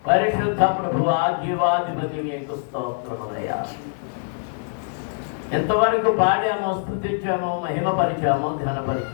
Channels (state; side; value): silent; right; digital silence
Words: పరిశుద్ధ ప్రభువా, జీవాధిపతి, మీకు స్తోత్రములయ్యా. ఎంతవరకు పాడామో, స్తుతించామో, మహిమపరిచామో,